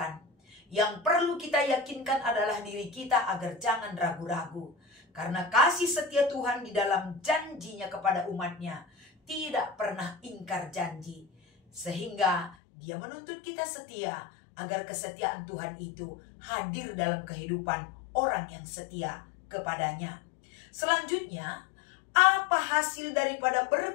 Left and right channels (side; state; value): right; drops out; at 12.6 s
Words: Yang perlu kita yakinkan adalah diri kita agar jangan ragu-ragu. Karena kasih setia Tuhan di dalam janjinya kepada umatnya tidak pernah ingkar janji. Sehingga Dia menuntut kita setia agar kesetiaan Tuhan itu hadir dalam kehidupan orang yang setia kepadanya. Selanjutnya, apa hasil daripada